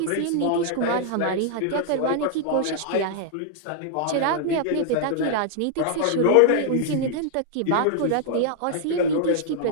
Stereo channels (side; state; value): both; different; correlation -0.01